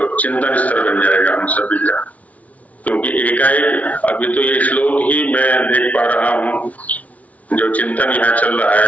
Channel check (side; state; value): right; late; 0.069 ms